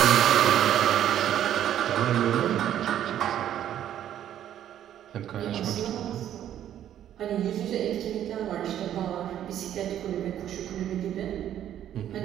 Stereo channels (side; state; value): left; quieter; 10.9 dB